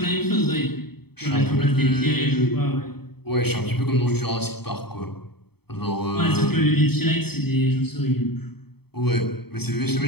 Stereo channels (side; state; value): right; late; 0.97 ms